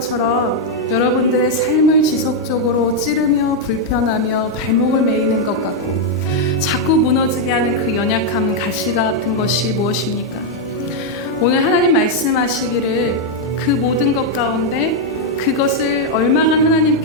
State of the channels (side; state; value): both; normal; correlation -0.01